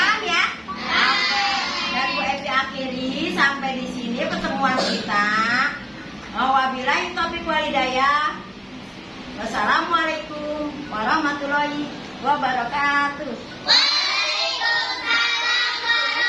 ya? Oke. Dan Bu Evi akhiri sampai di sini pertemuan kita. Wabillahi taufiq wal hidayah. Wassalamualaikum warahmatullahi wabarakatuh. Waalaikumsalam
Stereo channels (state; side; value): identical; both; correlation 1.00